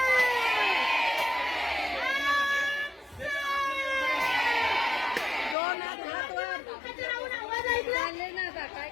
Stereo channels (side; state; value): right; drops out; at 5.6 s